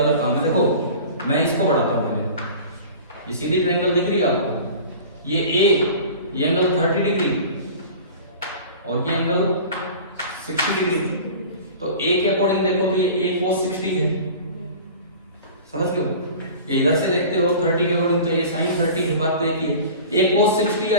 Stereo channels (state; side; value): inverted; both; correlation -0.40